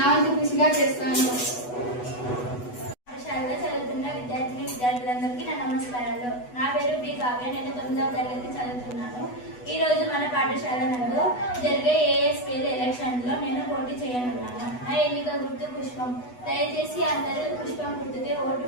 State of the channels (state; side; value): late; right; 8.1 ms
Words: వంతు కృషిగా చేస్తాను. పాఠశాలలో చదువుతున్న విద్యార్థులందరికీ నా నమస్కారాలు. నా పేరు బి కావ్య. నేను 9వ తరగతి చదువుతున్నాను. ఈ రోజు మన పాఠశాల నందు జరిగే ఏఎస్పీఎల్ ఎలక్షన్లో నేను పోటీ చేయనున్నాను. నా ఎన్నిక గుర్తు పుష్పం. దయచేసి అందరూ పుష్పం గుర్తుకే ఓటు